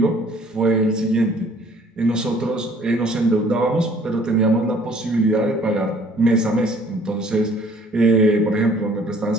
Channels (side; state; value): both; normal; correlation 0.56